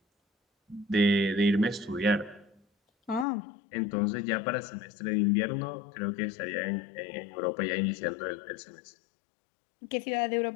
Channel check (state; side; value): drops out; right; at 3.2 s